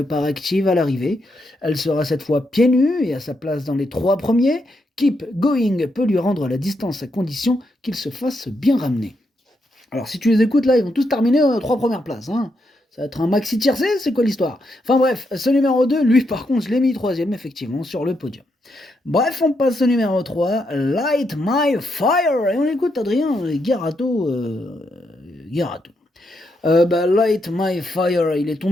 part active à l'arrivée. Elle sera cette fois pieds nus et à sa place dans les 3 premiers. Keep Going peut lui rendre la distance à condition qu'il se fasse bien ramener. Alors si tu les écoutes là, ils vont tous terminer aux 3 premières places, hein. Ça va être un maxi tiercé, c'est quoi l'histoire? Enfin bref, ce numéro 2, lui par contre, je l'ai mis 3e effectivement sur le podium. Bref, on passe au numéro 3, Light My Fire, et on écoute Adrien Garato. Light My Fire, il est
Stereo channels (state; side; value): normal; both; correlation 0.80